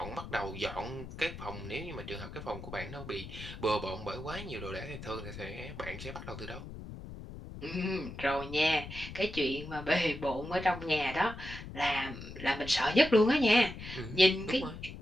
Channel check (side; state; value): left; noise; rumble, 11 dB below the sound